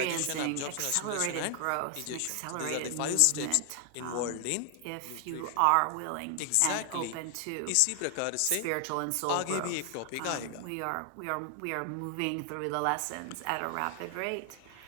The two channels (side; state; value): both; different; correlation 0.00